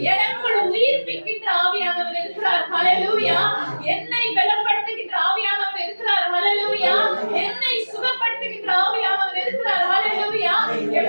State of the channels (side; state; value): both; inverted; correlation -1.00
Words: எனக்குள் உயிர்ப்பிக்கின்ற ஆவியானவர் இருக்கிறார். ஹல்லேலூயா. என்னை பலப்படுத்துகின்ற ஆவியானவர் இருக்கிறார். ஹல்லேலூயா. என்னை சுகப்படுத்துகின்ற ஆவியானவர் இருக்கிறார். ஹல்லேலூயா.